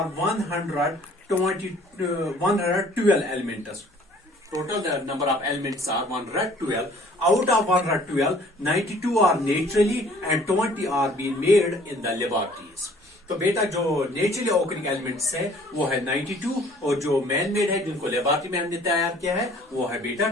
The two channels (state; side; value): normal; both; correlation 0.55